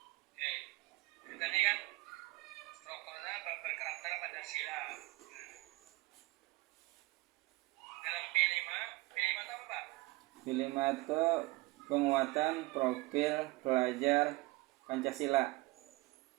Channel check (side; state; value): left; quieter; 21.3 dB